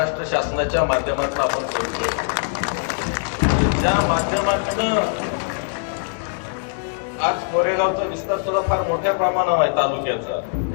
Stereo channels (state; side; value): silent; right; 61 dB below the other